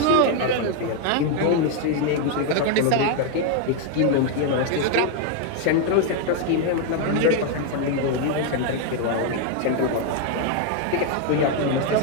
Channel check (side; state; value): both; different; correlation 0.01